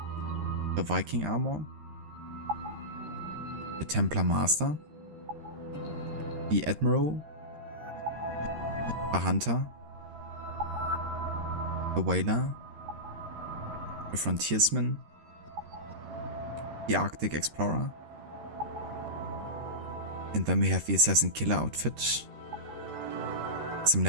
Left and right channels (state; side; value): late; left; 13 ms